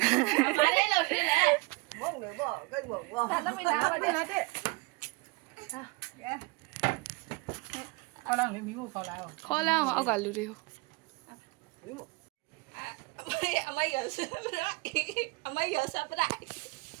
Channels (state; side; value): quieter; left; 27.0 dB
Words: ဘာလဲလို့ထင်းလဲမုံနေပေါ့ကိတ်မုံပေါ့ဒါလည်းမနာပါနဲ့ဟာခေါ်လာမီးမို့ခေါ်လာတော့ခေါ်လာအောင်အောက်ကလူတွေကိုမီးမို့အမေရစပရိုက်အမေရစပရိုက်